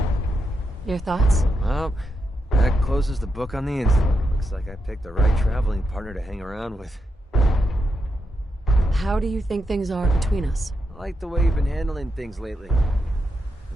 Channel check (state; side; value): normal; both; correlation 0.84